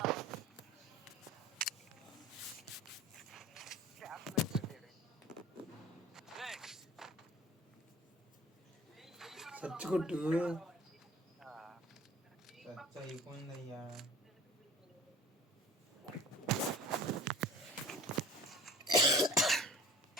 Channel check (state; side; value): normal; both; correlation 0.44